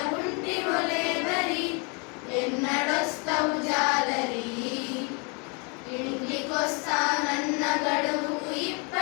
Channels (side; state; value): right; quieter; 33.4 dB